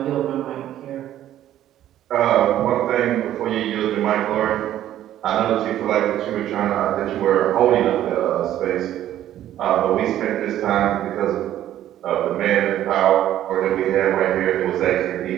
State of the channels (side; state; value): left; quieter; 12.3 dB